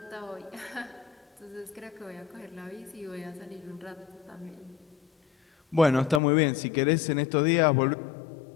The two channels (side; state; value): right; drops out; at 6.2 s